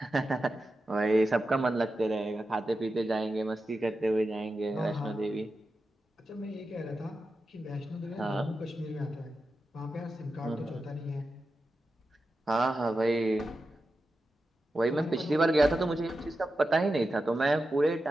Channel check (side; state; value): both; normal; correlation 0.91